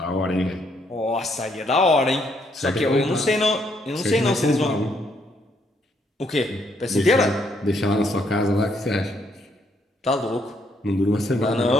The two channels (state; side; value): normal; both; correlation 0.72